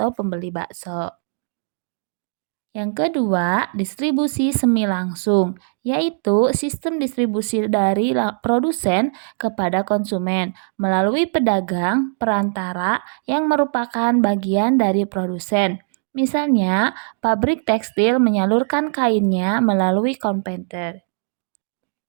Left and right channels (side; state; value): left; silent; digital silence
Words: pembeli bakso. Yang kedua, distribusi semi langsung, yaitu sistem distribusi dari produsen kepada konsumen melalui pedagang perantara yang merupakan bagian dari produsen. Misalnya, pabrik tekstil menyalurkan kainnya melalui konveyor.